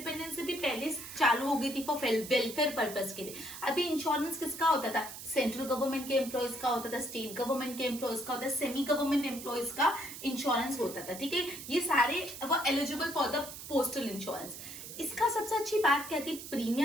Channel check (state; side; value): noise; right; hiss, 11 dB below the sound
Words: से भी पहले चालू हो गई थी फॉर वेलफेयर पर्पस के लिए. अभी इंश्योरेंस किसका होता था? सेंट्रल गवर्नमेंट के एम्प्लॉयज का होता था, स्टेट गवर्नमेंट के एम्प्लॉयज का होता था, सेमी गवर्नमेंट एम्प्लॉयज का इंश्योरेंस होता था. ठीक है, ये सारे वो eligible for the postal insurance. इसका सबसे अच्छी बात क्या थी?